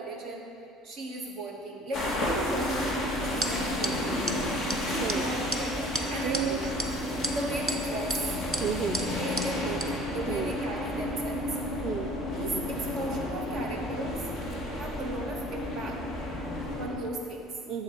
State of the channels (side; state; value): both; normal; correlation 0.50